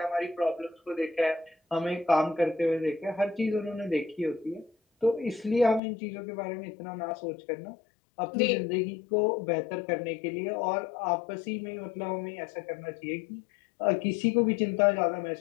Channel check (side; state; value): right; drops out; at 5.8 s